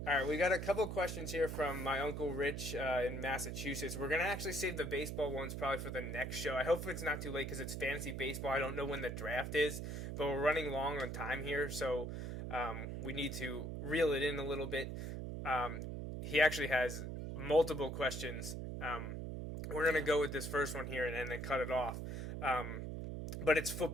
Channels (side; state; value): right; noise; hum, 5 dB below the sound